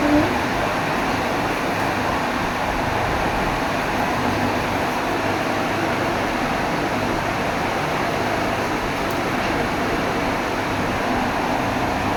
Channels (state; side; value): identical; both; correlation 1.00